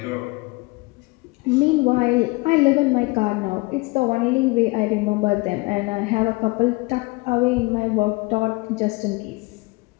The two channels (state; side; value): quieter; right; 25.0 dB